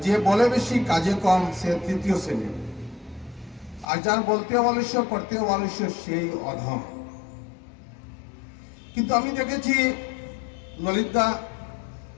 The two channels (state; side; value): drops out; right; at 3.9 s